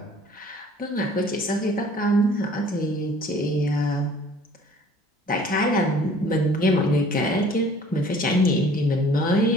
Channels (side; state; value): both; normal; correlation 0.52